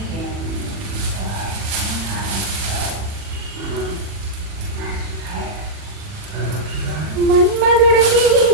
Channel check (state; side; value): late; left; 40 ms